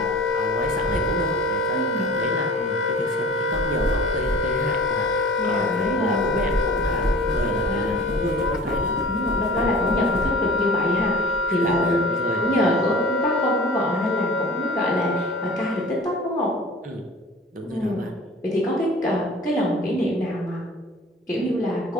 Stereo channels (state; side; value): normal; both; correlation 0.42